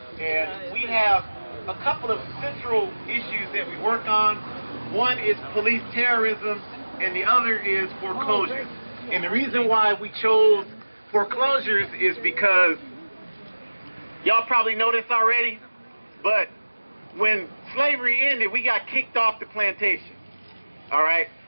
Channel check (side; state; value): both; inverted; correlation -1.00